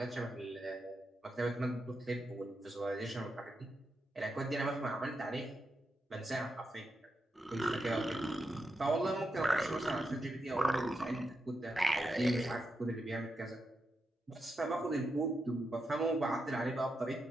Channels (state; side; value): normal; both; correlation 0.86